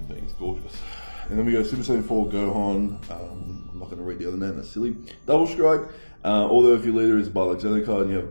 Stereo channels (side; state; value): both; inverted; correlation -1.00